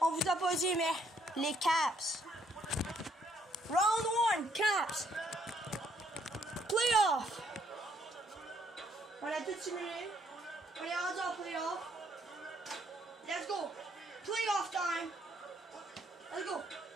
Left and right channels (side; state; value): both; normal; correlation 0.69